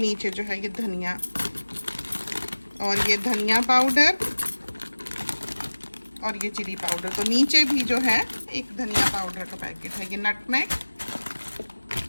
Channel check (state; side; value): inverted; both; correlation -1.00